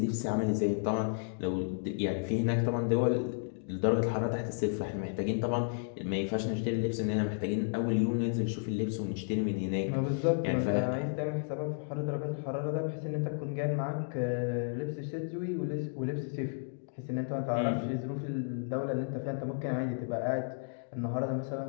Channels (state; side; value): silent; right; digital silence